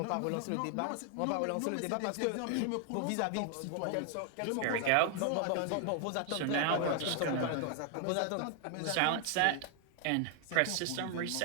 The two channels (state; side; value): different; both; correlation 0.00